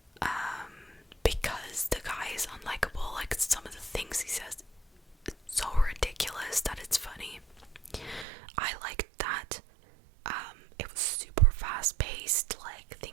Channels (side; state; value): left; drops out; at 8.2 s